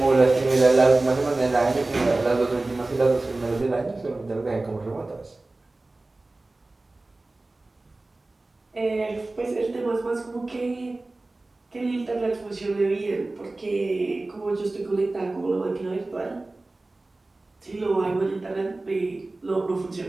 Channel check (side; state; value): left; quieter; 3.0 dB